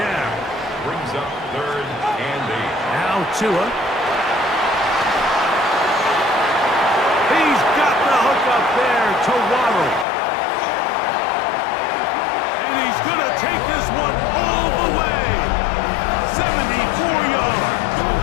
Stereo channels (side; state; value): right; drops out; at 10.1 s